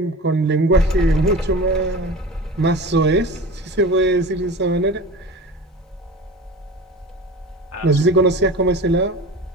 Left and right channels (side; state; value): both; normal; correlation 0.35